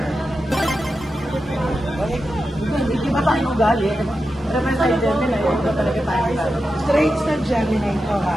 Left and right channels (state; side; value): normal; both; correlation 0.90